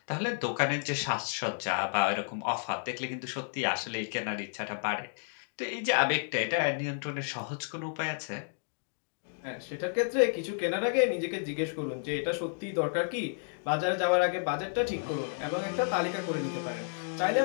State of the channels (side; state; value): right; silent; digital silence